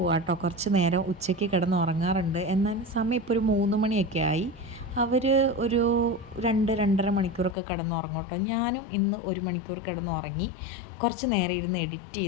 കേട്ടോ. കുറച്ച് നേരം ഉച്ചയ്ക്ക് കിടന്ന് ഉറങ്ങാറുണ്ട്. എന്നാൽ സമയം ഇപ്പോൾ ഒരു 3 മണിയൊക്കെ ആയി. അവർ ഒരു 2-2.5 മണിക്കൂറൊക്കെ കിടന്നുറങ്ങും കേട്ടോ. ഞാനും ഇന്ന് 1 മണിക്കൂർ കിടന്നുറങ്ങി. കുറച്ച് നേരം ഇരുന്ന് എഡിറ്റ്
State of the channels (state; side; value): drops out; right; at 7.6 s